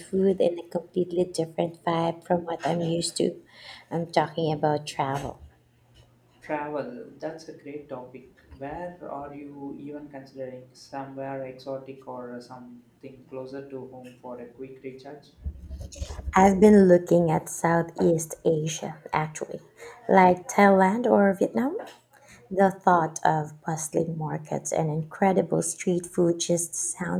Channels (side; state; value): both; identical; correlation 1.00